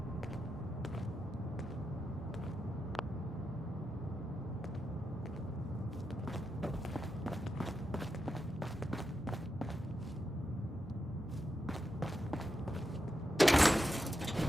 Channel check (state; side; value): normal; both; correlation 0.87